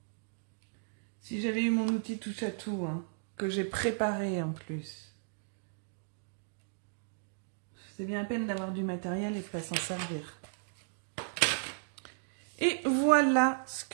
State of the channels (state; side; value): silent; left; digital silence